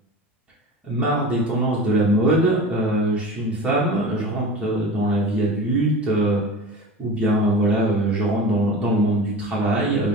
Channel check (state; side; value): normal; both; correlation 0.33